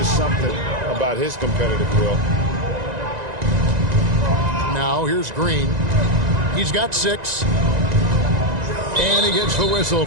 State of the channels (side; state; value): left; late; 1.9 ms